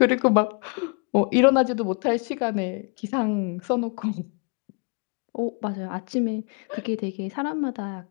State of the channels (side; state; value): right; quieter; 34.9 dB